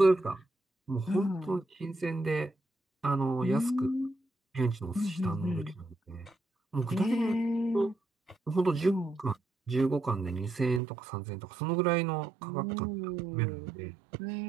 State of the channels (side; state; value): left; drops out; at 10.8 s